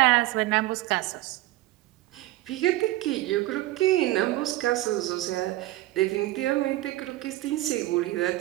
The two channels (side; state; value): left; quieter; 17.1 dB